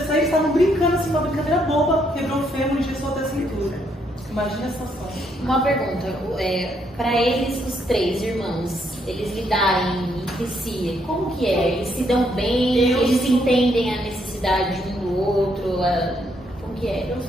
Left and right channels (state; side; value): normal; both; correlation 0.73